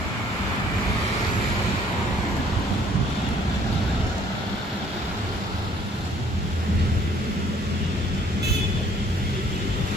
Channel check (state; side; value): normal; both; correlation 0.60